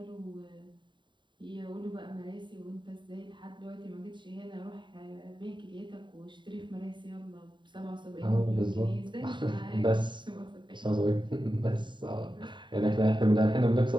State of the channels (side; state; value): left; late; 0.23 ms